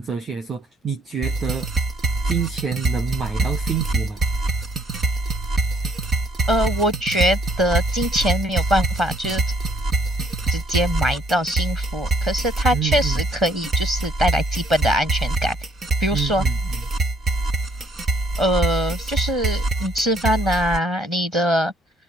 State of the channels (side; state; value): both; normal; correlation 0.65